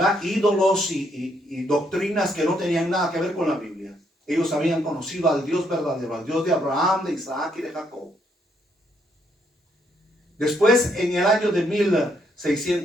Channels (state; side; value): normal; both; correlation 0.73